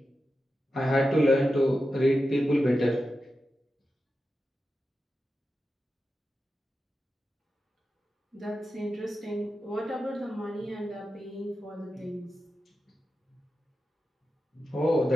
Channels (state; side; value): normal; both; correlation 0.91